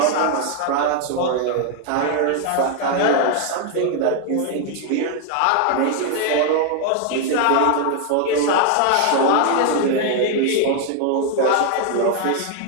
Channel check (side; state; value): both; different; correlation 0.00